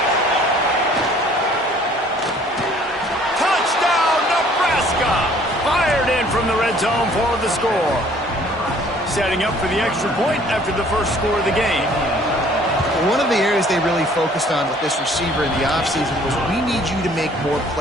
Touchdown, Nebraska! Fired in from the red zone for the score. setting up for the extra point after the first score of the game. One of the areas they really focused on with this receiver in the offseason was we need you to make more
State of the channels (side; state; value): both; normal; correlation 0.56